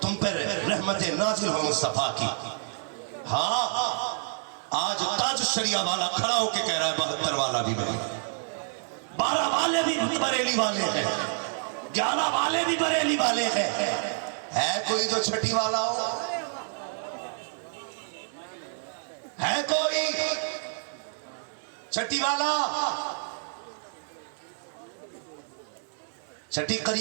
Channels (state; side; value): silent; left; digital silence